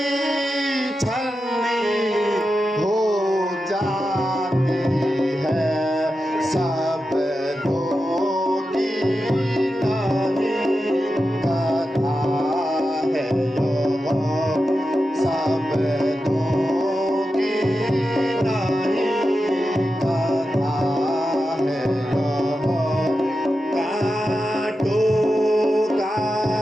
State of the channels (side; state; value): both; normal; correlation 0.90